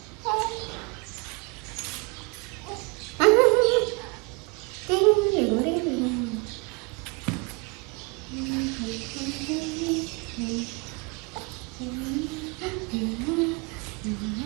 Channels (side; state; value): left; quieter; 30.4 dB